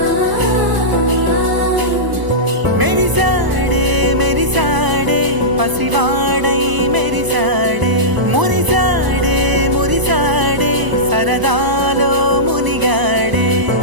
మెరిసాడే మెరిసాడే పసివాడై మెరిసాడే మురిసాడే మురిసాడే సరదాలో మునిగాడే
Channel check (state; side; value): late; left; 1.0 ms